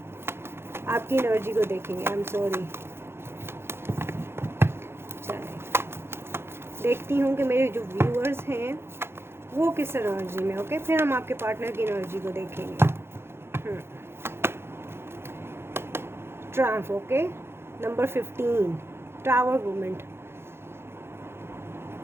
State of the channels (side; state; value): left; late; 0.12 ms